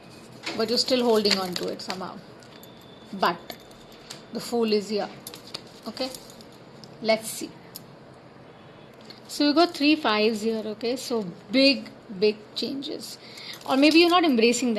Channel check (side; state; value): both; identical; correlation 1.00